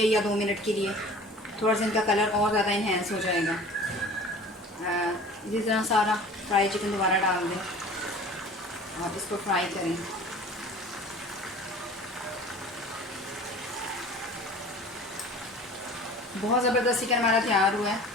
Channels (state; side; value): normal; both; correlation 0.43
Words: या 2 मिनट के लिए। थोड़ा सा इनका कलर और ज़्यादा इन्हेंस हो जाएगा। इसी तरह सारा फ्राई चिकन दोबारा डाल दें और इसको फ्राई करें। बहुत ज़बरदस्त चिकन हमारा तैयार हुआ है।